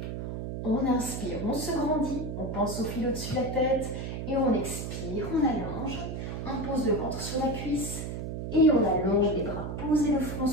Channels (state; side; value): noise; right; hum, 5 dB below the sound